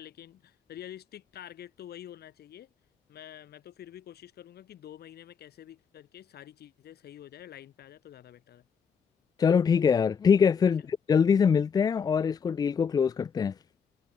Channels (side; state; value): right; quieter; 6.3 dB